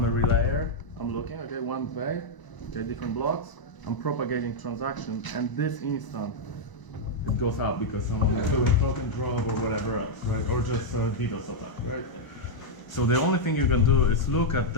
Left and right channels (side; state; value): right; late; 1.0 ms